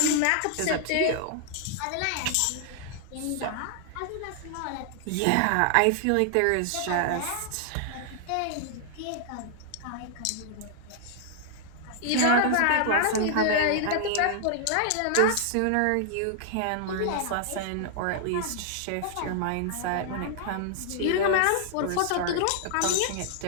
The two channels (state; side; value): different; both; correlation 0.00